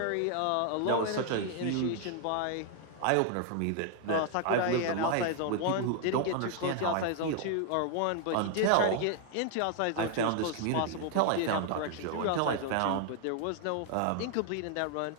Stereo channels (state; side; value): different; both; correlation 0.00